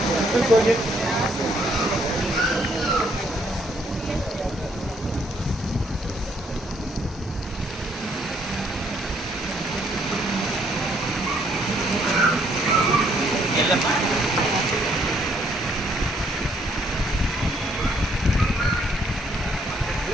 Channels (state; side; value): normal; both; correlation 0.68